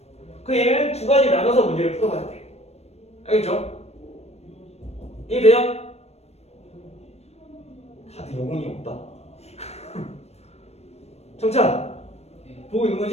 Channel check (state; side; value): late; right; 0.31 ms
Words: 그 얘는 두 가지 나눠서 문제를 풀어봐야 돼. 알겠죠? 이해돼요? 다들 영혼이 없다. 정찬 보고 있는